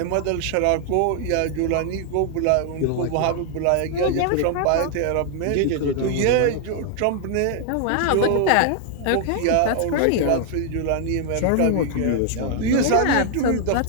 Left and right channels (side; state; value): both; different; correlation 0.00